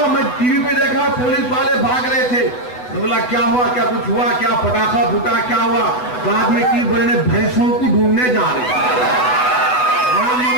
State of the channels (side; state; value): right; late; 8.0 ms